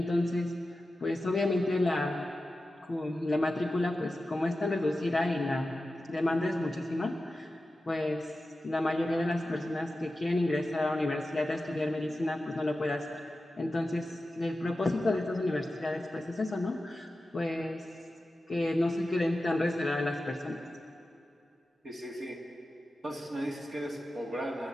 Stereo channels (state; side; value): normal; both; correlation 0.93